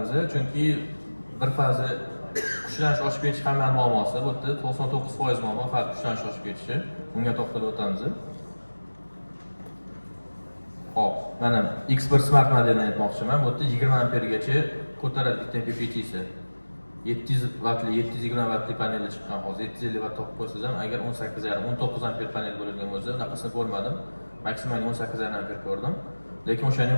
chunki bir fazi kuchlanish oshib ketish hamma muammosi, bu yerda 99% muammo faqat kuchlanish oshib ketishi. Bunga to'xtalib o'tamiz. Hop, mana X1 Smart modelini aytmoqchiman. Bu yerda 20 ampergacha ko'taradi bitta MPPT'si. 700 wattli, 720 wattli paneli chiqqan hozir. 750 watt topib qo'ysangiz ham, agar 18,5, 19 amper panel bo'ladigan bo'lsa, bunaqasini ko'rmadim. Maksimal 18,5 amper ko'rdim. Lekin o'shani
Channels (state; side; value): inverted; both; correlation -1.00